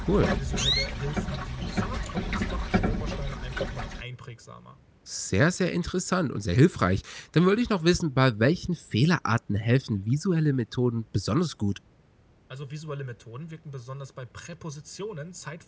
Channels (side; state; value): both; identical; correlation 1.00